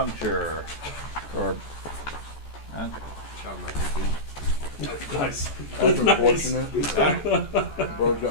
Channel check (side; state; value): right; late; 14 ms